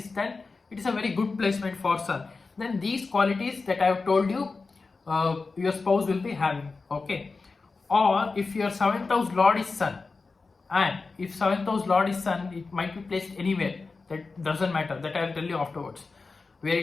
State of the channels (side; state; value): right; quieter; 4.1 dB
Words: then it is a very good placement for sun. Then these qualities that I have told you, your spouse will be having, okay. Or if your 7th house lord is sun, and if 7th house lord is sun, it might be placed anywhere, that doesn't matter, that I will tell you afterwards where